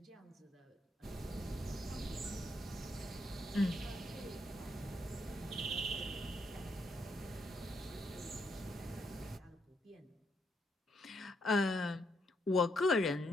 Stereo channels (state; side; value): normal; both; correlation 0.77